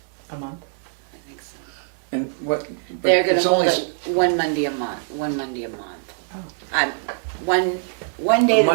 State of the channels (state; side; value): silent; left; digital silence